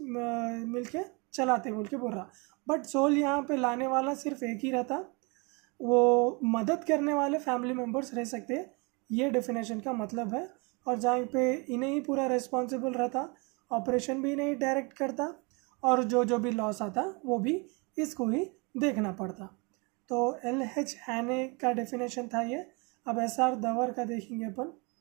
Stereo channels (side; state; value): left; quieter; 30.2 dB